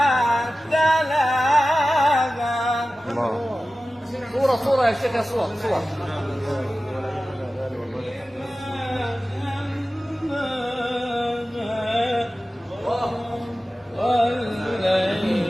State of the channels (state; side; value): normal; both; correlation 0.95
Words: تلاها صورة يا شيخ، يا صور